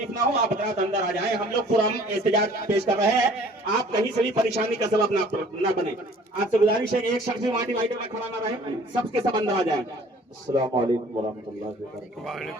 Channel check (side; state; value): both; normal; correlation 0.52